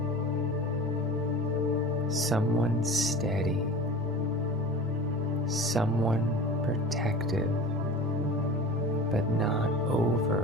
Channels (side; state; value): both; normal; correlation 0.36